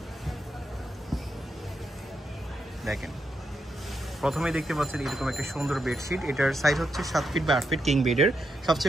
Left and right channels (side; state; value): both; normal; correlation 0.83